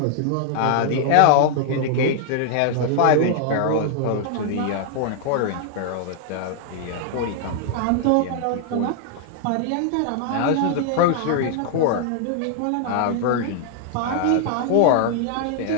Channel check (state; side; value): different; both; correlation 0.00